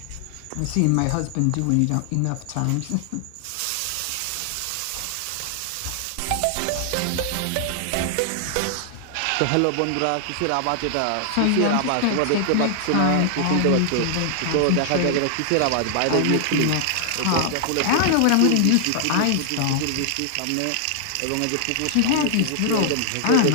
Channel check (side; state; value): both; different; correlation 0.00